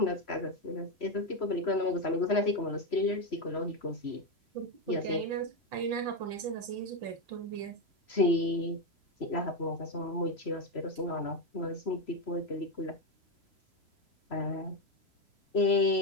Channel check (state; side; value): late; right; 3.0 ms